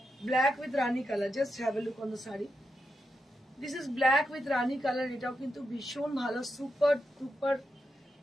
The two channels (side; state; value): both; normal; correlation 0.86